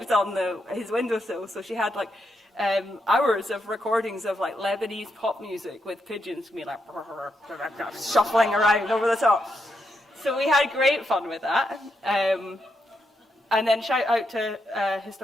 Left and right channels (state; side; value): normal; both; correlation 0.82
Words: on his windowsill. So she had like hours of recordings of like Lebanese pop music with pigeons being like shuffling around over the top. So we had great fun with that. And then shout out to